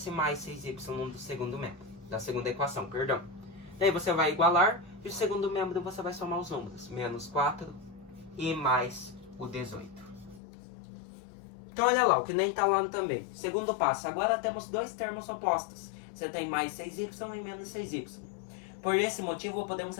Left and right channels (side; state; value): right; drops out; at 10.4 s